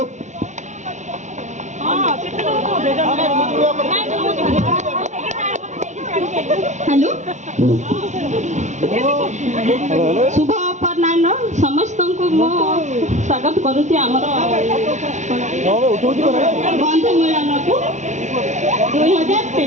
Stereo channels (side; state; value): left; late; 0.34 ms